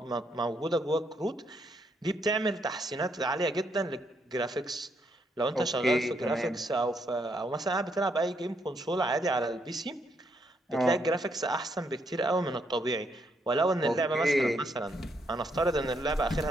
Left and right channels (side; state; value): both; normal; correlation 0.75